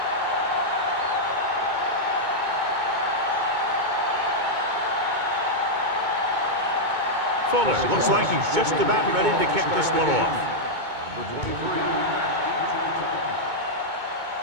Fuller looks like he's just about ready to kick this one off. Number 23.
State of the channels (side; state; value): left; late; 2.2 ms